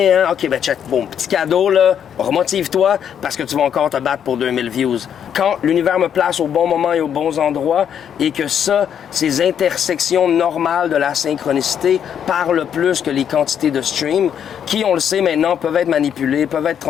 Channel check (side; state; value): right; quieter; 8.7 dB